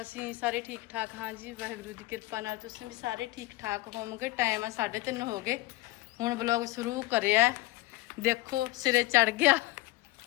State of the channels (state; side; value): quieter; right; 19.2 dB